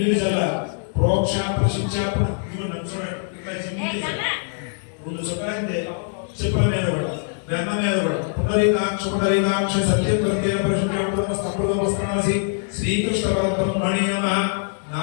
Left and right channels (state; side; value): silent; right; 64 dB below the other